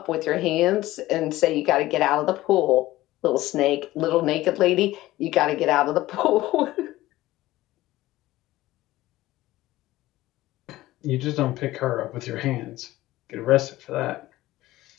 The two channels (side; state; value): right; quieter; 16.7 dB